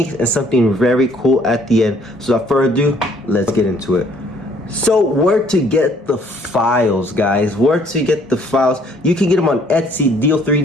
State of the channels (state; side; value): normal; both; correlation 0.61